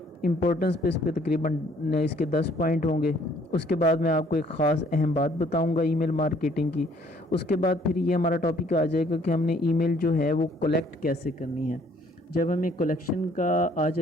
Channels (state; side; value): normal; both; correlation 0.61